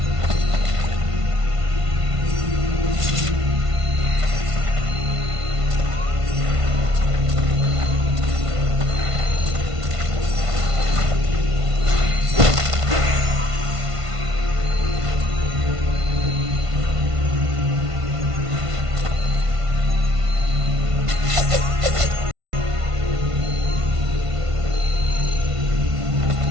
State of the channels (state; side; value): late; left; 1.5 ms